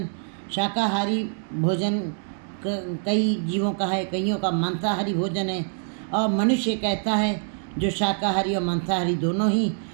शाकाहारी भोजन कई जीवों का है, कईयों का मांसाहारी भोजन है और मनुष्य कहता है जो शाकाहारी और मांसाहारी दोनों ही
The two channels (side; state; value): left; silent; 62 dB below the other